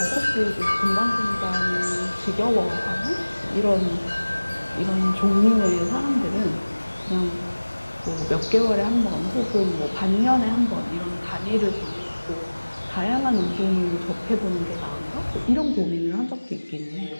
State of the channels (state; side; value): inverted; both; correlation -1.00